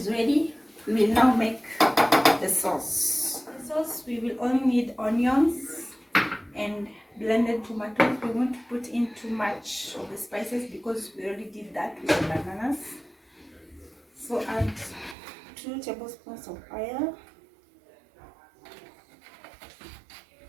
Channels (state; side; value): drops out; left; at 15.2 s